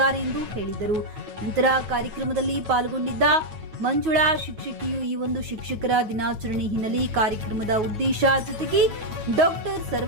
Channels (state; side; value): late; left; 9.4 ms